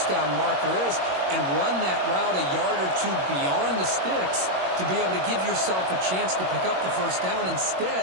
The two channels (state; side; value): late; left; 21 ms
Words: down marker is and run that route a yard or two beyond the sticks to be able to give yourself a chance to pick up the first down. Instead,